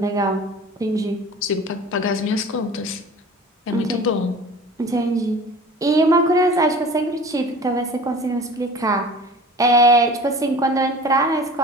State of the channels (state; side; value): normal; both; correlation 0.41